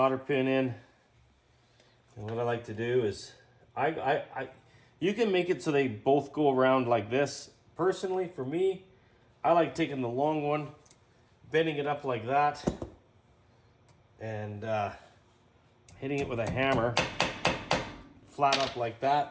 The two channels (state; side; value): identical; both; correlation 1.00